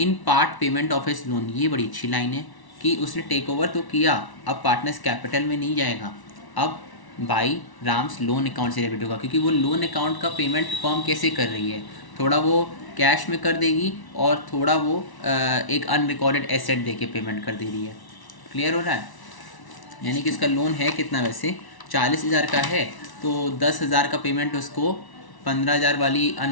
part payment of his loan. ये बड़ी अच्छी लाइन है कि उसने टेक ओवर तो किया, अब पार्टनर्स कैपिटल में नहीं जाएगा, अब बाई राम्स लोन अकाउंट से डेबिट होगा, क्योंकि वो लोन अकाउंट का पेमेंट फॉर्म कैसे कर रही है, थोड़ा वो कैश में कर देगी और थोड़ा वो एक अनरिकॉर्डेड एसेट दे के पेमेंट कर दे रही है। क्लियर हो रहा है? यानी कि इसका लोन है कितना, वैसे 40,000 का है, तो तो 10,000 का पेमेंट उसको 15,000 वाली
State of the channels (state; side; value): late; right; 1.1 ms